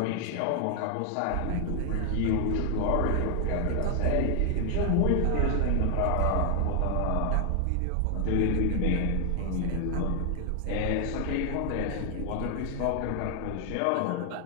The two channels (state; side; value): different; both; correlation 0.00